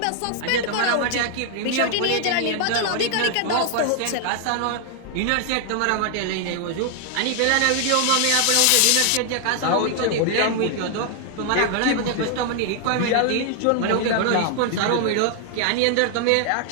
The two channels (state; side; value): different; both; correlation 0.00